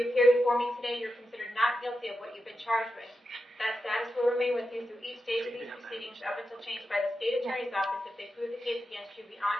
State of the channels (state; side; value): normal; both; correlation 0.88